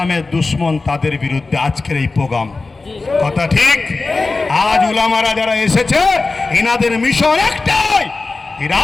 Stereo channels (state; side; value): quieter; right; 3.7 dB